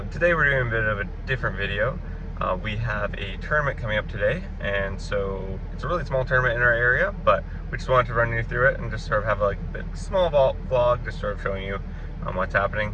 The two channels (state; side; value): identical; both; correlation 1.00